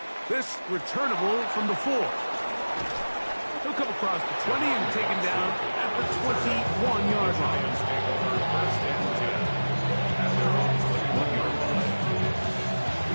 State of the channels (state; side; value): inverted; both; correlation -1.00